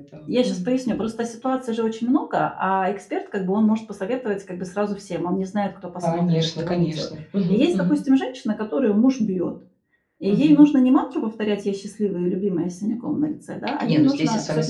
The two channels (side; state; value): both; identical; correlation 1.00